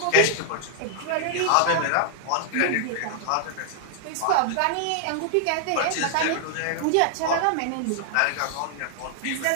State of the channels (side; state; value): both; different; correlation -0.01